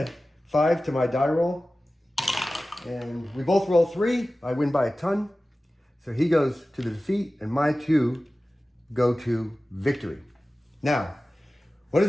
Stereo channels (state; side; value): normal; both; correlation 0.96